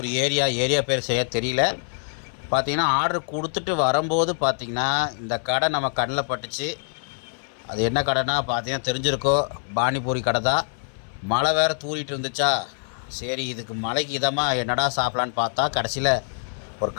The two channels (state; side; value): silent; right; 58 dB below the other